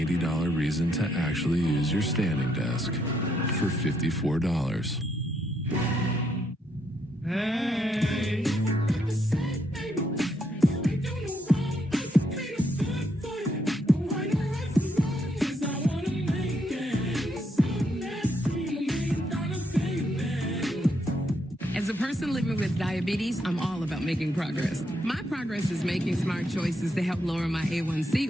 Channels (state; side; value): normal; both; correlation 0.76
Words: reason to actually use your standing desk for $54. Hey. As a person living with diabetes, I'm all about making progress. My progress is making smart choices to help lower my